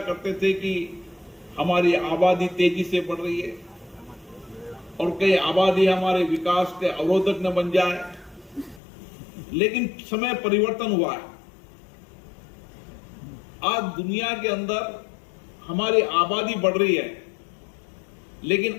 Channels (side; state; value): right; drops out; at 8.8 s